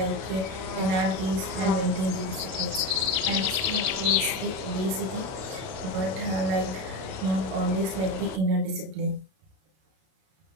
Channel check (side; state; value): left; late; 32 ms